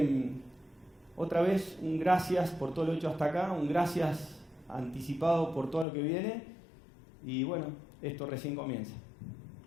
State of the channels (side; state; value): right; drops out; at 5.9 s